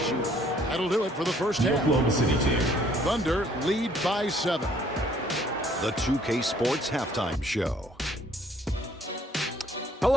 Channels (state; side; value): normal; both; correlation 0.61